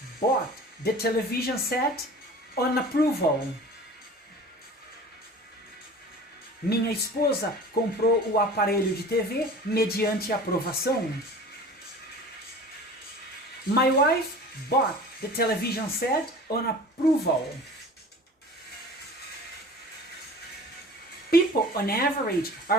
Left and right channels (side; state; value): both; normal; correlation 0.41